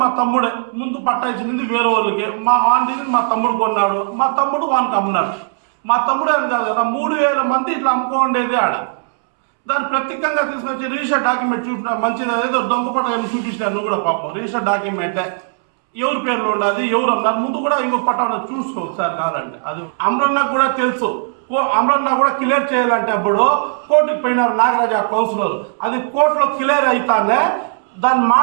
మా తమ్ముడే. ముందు పట్టా ఇచ్చింది వేరే వాళ్ళకి, మా వాడిని మా తమ్ముడు కొన్నాడు, మా తమ్ముడు వానికి అమ్మినాడు. మా తమ్ముడే అని కాదు కదా, 3,000 మంది ఇట్లా అమ్ముకోండేది ఆడ. దాన్ని ప్రత్యేకంగా తీసుకొచ్చి రిజిస్టర్ డాక్యుమెంట్ చూపిన మంచిది, ఏదో దొంగపట్ట చూపించినారు. నువ్వు కూడా పాపం రిజిస్టర్ డాక్యుమెంటే ఎవరి పేర్లో ఉండదు, ఎవరు అన్నారు ముందు కూడా ఇంకో పట్టాను చూసుకో సార్ కావాలంటే. అది అమరన్నకు కూడా తెలుసు. అమరన్న కూడా క్లియర్ చేయాలంటే అప్పుడు కోర్టుకు పోయినారు నాగరాజు కౌన్సిలర్. అది కోర్టులో క్లియర్ అవుతానే దాన్ని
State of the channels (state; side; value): silent; left; 68 dB below the other